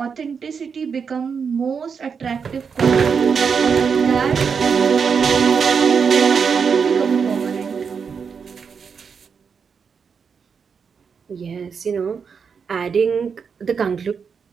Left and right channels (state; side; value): quieter; left; 6.1 dB